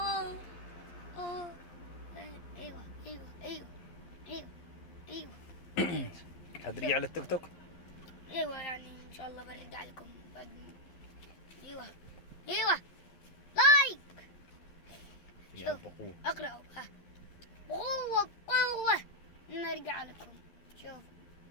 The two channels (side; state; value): right; late; 12 ms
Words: أوه. أيوة أيوة أيوة أيوة أيوة. هترجع للتيك توك؟ ايوه يعني ان شاء الله برجع لكم بعد. ايوه ايوه لايك. يا بقوة. اقرأوا بقوة بقوة نرجع لكم. شوف